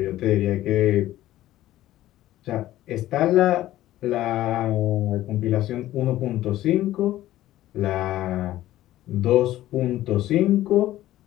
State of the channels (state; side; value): quieter; right; 14.6 dB